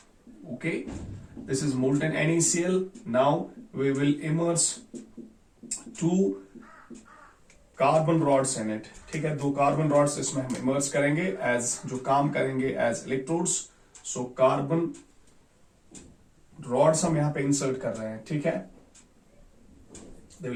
Okay, this is molten NaCl. Now we will immerse two carbon rods in it. ठीक है, दो कार्बन रॉड्स इसमें हम इमर्स करेंगे एज जो काम करेंगे as electrodes. So carbon rods हम यहां पे इंसर्ट कर रहे हैं. ठीक है, they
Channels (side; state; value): both; identical; correlation 1.00